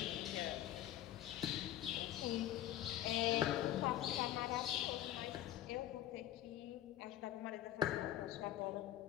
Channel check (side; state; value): right; quieter; 12.9 dB